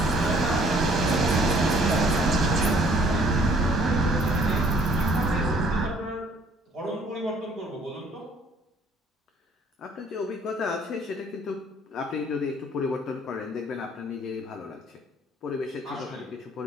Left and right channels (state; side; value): normal; both; correlation 0.60